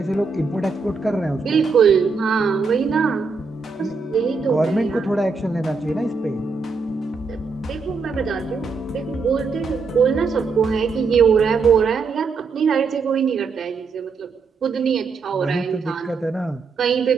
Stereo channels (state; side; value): quieter; left; 4.7 dB